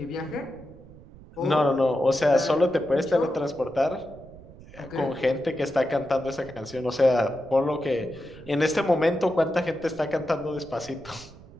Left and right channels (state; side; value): noise; right; rumble, 20 dB below the sound